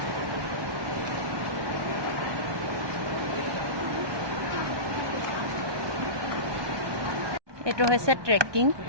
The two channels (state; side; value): late; left; 1.2 ms